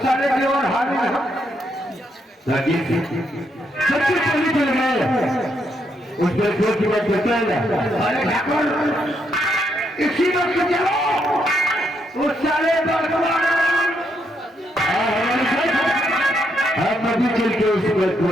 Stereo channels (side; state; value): both; normal; correlation 0.77